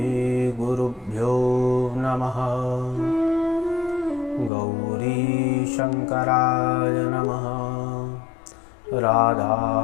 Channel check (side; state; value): right; drops out; at 4.5 s